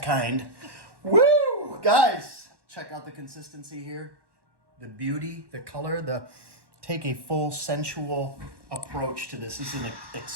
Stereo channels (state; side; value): late; left; 1.1 ms